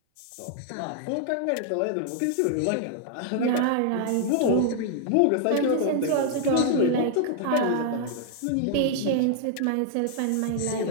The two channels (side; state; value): both; different; correlation -0.01